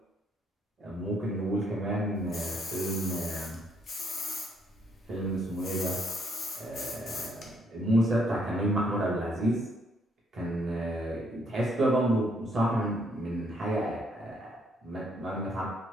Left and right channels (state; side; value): normal; both; correlation 0.71